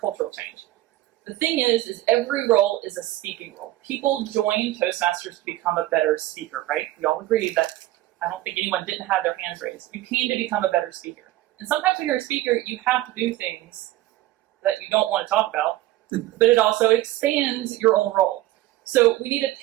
cultural change. The thing is every role is a speaking role. People join Toastmasters to become a better speaker, right? We all agree that I don't think anyone didn't have their hands raised. You came to become a better speaker. And sometimes when you're a speaker, you have to do things that you don't want to talk about, but it also expands your own role. So we need to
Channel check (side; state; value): left; quieter; 16.1 dB